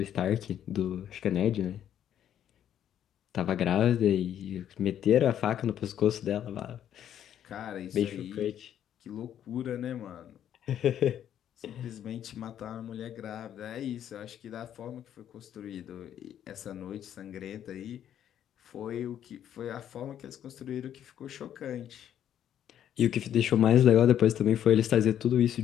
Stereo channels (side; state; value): right; quieter; 10.3 dB